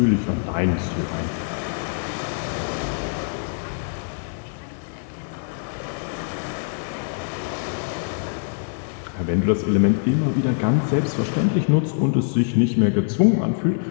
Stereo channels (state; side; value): silent; right; digital silence